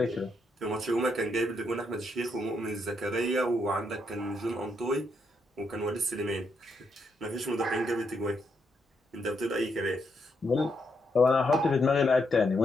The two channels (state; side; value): normal; both; correlation 0.79